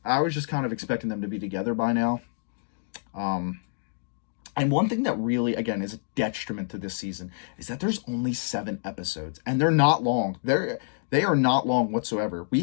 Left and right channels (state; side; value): silent; right; digital silence